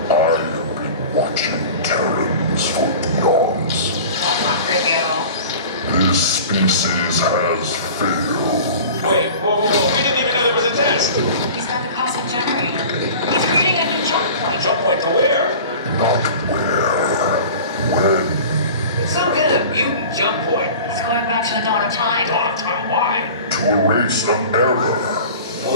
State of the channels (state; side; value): inverted; both; correlation -0.39